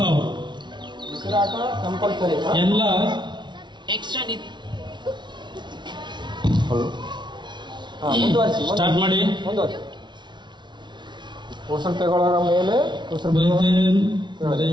ಔಟ್. ಎಲ್ಲ ಎಕ್ಸ್ಟ್ರಾ ಸ್ಟಾರ್ಟ್ ಮಾಡಿ. ಉಸಿರು ತಗೊಳ್ಳೋರ ಮೇಲೆ ಬ್ರೀತ್ ಇನ್,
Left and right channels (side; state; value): left; late; 0.22 ms